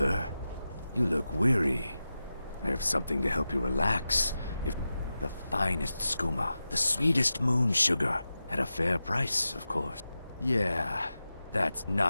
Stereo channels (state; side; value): inverted; both; correlation -0.92